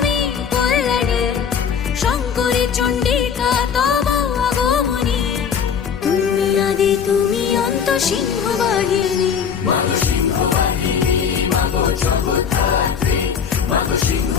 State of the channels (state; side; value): quieter; right; 7.1 dB